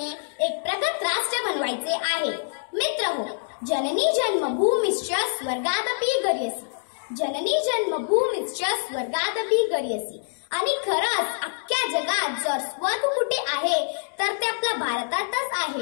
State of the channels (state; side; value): silent; right; digital silence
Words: एक प्रगत राष्ट्र बनवायचे आहे। मित्रहो, जननी जन्मभूमिश्च स्वर्गादपि गरीयसी, जननी जन्मभूमिश्च स्वर्गादपि गरीयसी। आणि खरंच अख्ख्या जगात जर स्वर्ग कुठे आहे तर ते आपल्या भारतातच